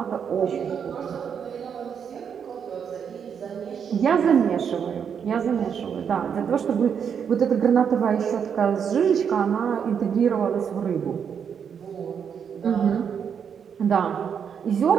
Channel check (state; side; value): quieter; left; 7.4 dB